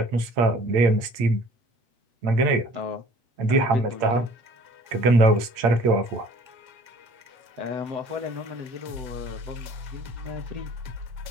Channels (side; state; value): left; late; 8.7 ms